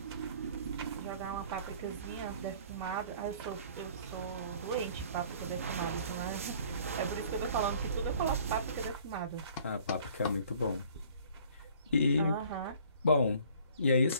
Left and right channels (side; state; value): both; inverted; correlation -0.54